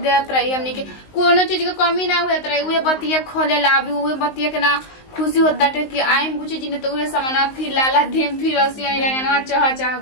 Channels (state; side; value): late; right; 19 ms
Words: देत रही हमनी के कोनो चीज के कमी ना होत रही उहे बतिया खोले ला अभी उहे बतिया के ना खुशी होता है कि आइम बुच्ची जी ने तो उहे सामान फिर लाला देम फिर रसी आई लगना चाह चाह